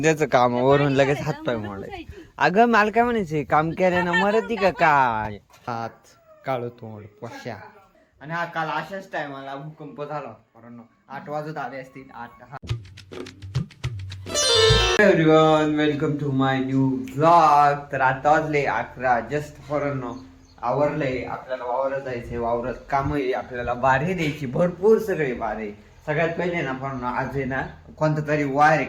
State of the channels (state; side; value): identical; both; correlation 1.00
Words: त्याचं कामावरून लगेच हातपाय मोडाय. अगं मला काय म्हणायचंय, काम केल्यानं मरती का काय? हात काळो तोंड पश्या. आणि हा काल अशाच टायमाला भूकंप झाला. कारण 8 वाजत आले असतील 8. Everyone welcome to my new vlog. तर आता वाजले 11 जस्ट फॉरनो आवरलंय. आपल्याला वावरात जायचंय, वावरात काम आहे, आपल्याला बारे द्यायची भरपूर सगळे बारे. सगळ्यात पहिले ना पण आज आहे ना कोणता तरी वार आहे,